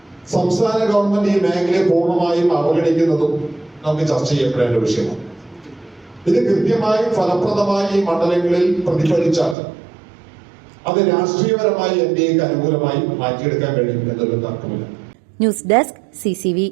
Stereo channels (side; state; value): left; drops out; at 9.6 s